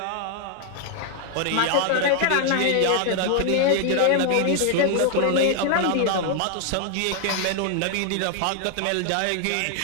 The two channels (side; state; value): both; different; correlation 0.00